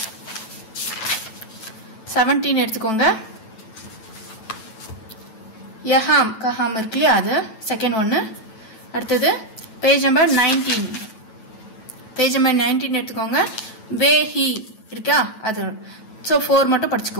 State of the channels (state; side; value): late; right; 9.2 ms